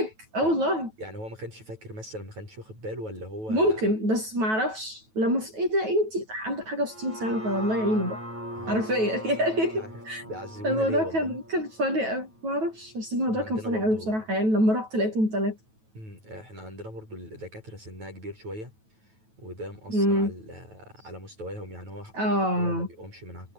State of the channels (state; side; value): late; left; 9.2 ms